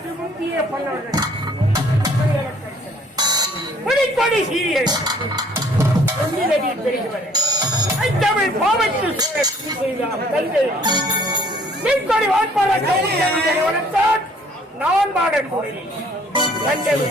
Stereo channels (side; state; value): both; normal; correlation 0.58